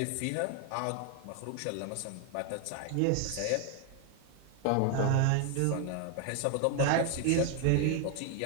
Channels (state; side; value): different; both; correlation 0.01